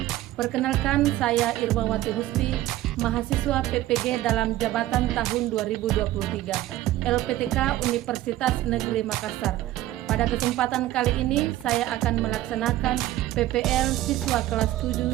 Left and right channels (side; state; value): left; quieter; 15.1 dB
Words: Perkenalkan, saya Irmawati Husni, mahasiswa PPG dalam jabatan tahun 2023, LPTK Universitas Negeri Makassar. Pada kesempatan kali ini, saya akan melaksanakan PPL siswa kelas